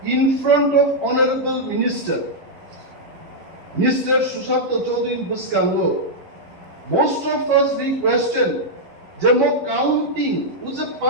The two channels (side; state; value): left; late; 11 ms